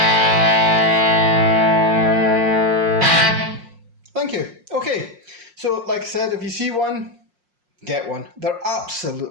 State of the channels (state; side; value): late; left; 5.6 ms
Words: So like I said, if you see one, get one. They're